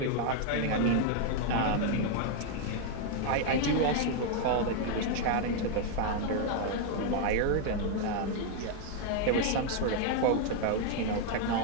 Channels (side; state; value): both; different; correlation 0.00